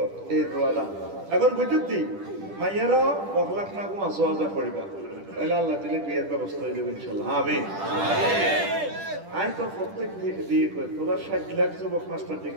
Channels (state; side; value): late; left; 10 ms